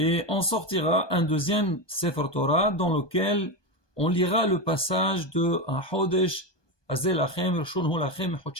on sortira un deuxième Sefer Torah dans lequel on lira le passage de HaChodesh que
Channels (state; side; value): late; right; 1.2 ms